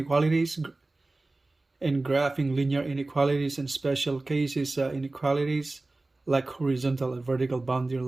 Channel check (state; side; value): quieter; left; 3.1 dB